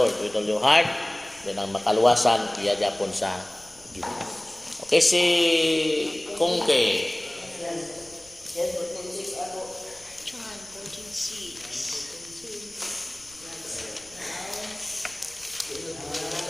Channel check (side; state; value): left; noise; rumble, 26 dB below the sound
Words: with all your heart, then ang makaluwasan iya gyapon sa Ginoo. Okay, si Kungke. John 14:6.